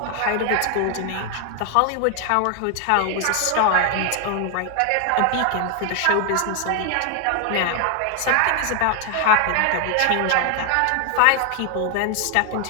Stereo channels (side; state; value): both; different; correlation 0.00